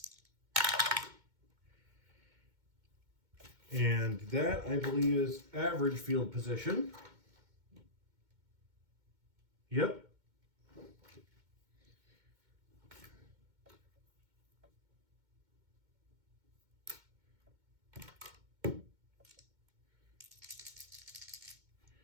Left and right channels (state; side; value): late; left; 2.2 ms